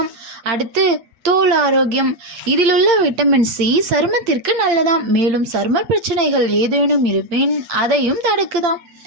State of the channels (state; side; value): late; left; 8.7 ms